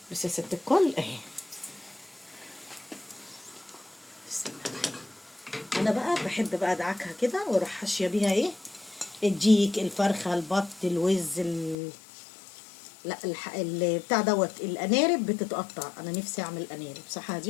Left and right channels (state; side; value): drops out; right; at 11.8 s